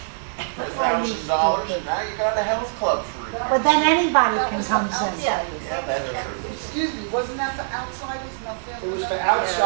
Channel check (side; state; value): left; silent; digital silence